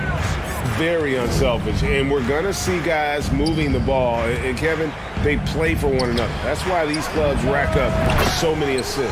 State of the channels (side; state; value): both; identical; correlation 1.00